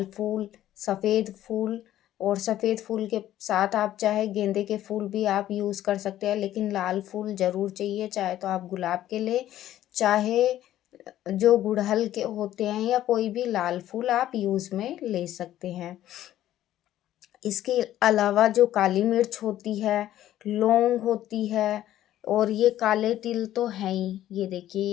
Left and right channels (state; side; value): quieter; right; 12.9 dB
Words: फूल, सफ़ेद फूल, और सफ़ेद फूल के साथ आप चाहे गेंदे के फूल भी आप यूज़ कर सकते हैं, लेकिन लाल फूल ज़रूर चाहिए। चाहे तो आप गुलाब के ले, चाहे जो गुड़हल के होते हैं, या कोई भी लाल फूल आप यूज़ में ले सकते हैं। इसके अलावा जो काली मिर्च होती है, लौंग होती है, और ये काले तिल तो हैं ही, ये देखिए